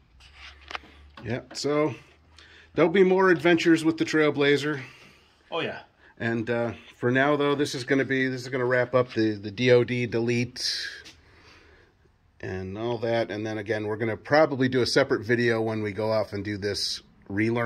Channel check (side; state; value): both; identical; correlation 1.00